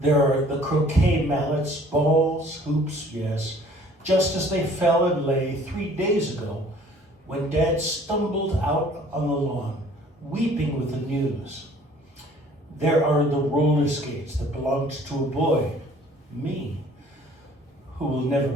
are the croquet mallets, balls, hoops, yes, just as they fell and lay 3 days ago when Dad stumbled out on the lawn, weeping with the news. There are the roller skates that belonged to a boy, me, who will never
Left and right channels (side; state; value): both; normal; correlation 0.54